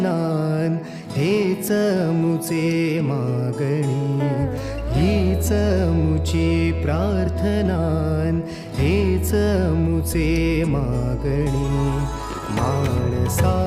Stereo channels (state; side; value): identical; both; correlation 1.00